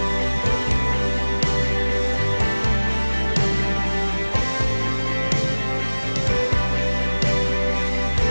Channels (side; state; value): both; inverted; correlation -1.00